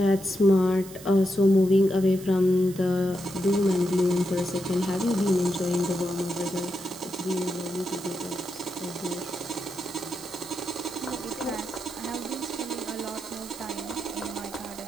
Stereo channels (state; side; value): noise; right; hiss, 17 dB below the sound